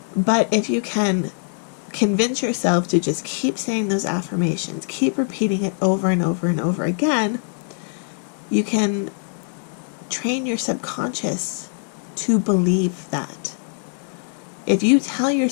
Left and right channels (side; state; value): right; silent; 64 dB below the other